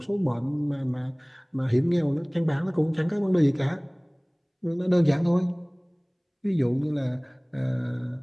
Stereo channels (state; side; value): identical; both; correlation 1.00